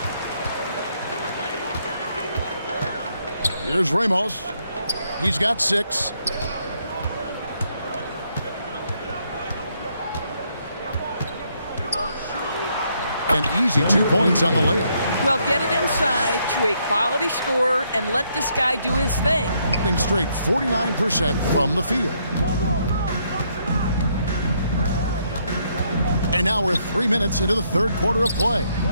Here's Ramos. He's got 6. An easy 2 points on the layup. Well, get it inside to a quality scorer and let this guy do his thing. Hitting straight 49% from the field. And now we're 3 minutes into the third quarter of play.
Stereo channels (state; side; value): inverted; both; correlation -0.73